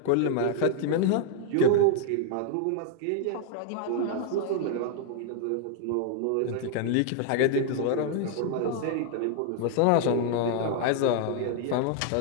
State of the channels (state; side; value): different; both; correlation 0.00